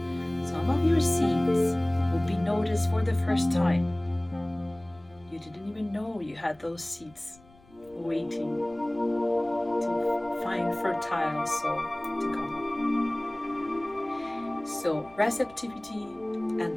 Some of your seeds will be noticed for the first time. You didn't even know you had those seeds waiting to find fertile soil to come. So, receptivity,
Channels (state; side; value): noise; left; rumble, 27 dB below the sound